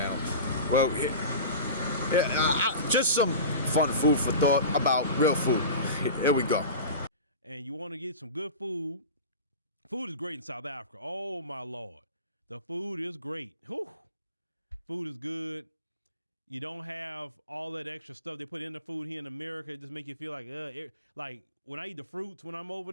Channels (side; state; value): both; inverted; correlation -0.32